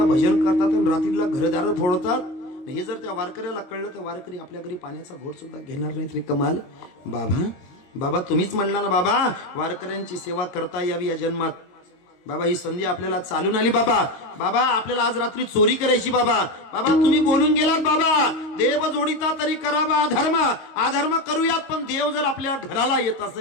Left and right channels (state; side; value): late; right; 22 ms